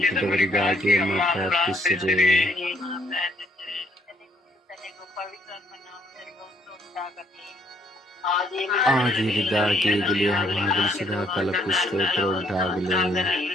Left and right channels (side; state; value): both; normal; correlation 0.68